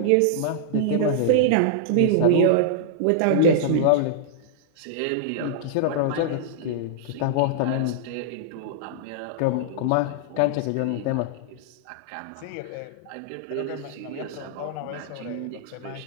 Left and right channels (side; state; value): both; different; correlation -0.02